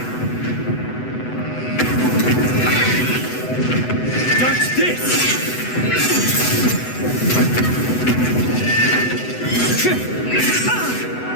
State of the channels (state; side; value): late; right; 8.0 ms